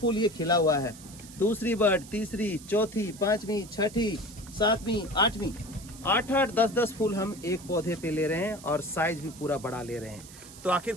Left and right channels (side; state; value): right; noise; hiss, 18 dB below the sound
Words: ये खिला हुआ है, दूसरी बर्ड, तीसरी, चौथी, 5वीं, 6ठी, 7वीं, 8वीं, 8-8, 10-10 फूल हम एक पौधे पे ले रहे हैं और साइज भी पूरा बड़ा ले रहे हैं। तो आखिर